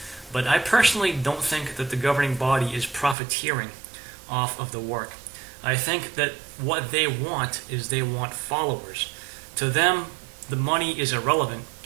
But I personally don't think that the governing body is profiteering off of the work. I think that what they want is they want followers. To them, the money is irrelevant.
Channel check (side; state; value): left; drops out; at 3.2 s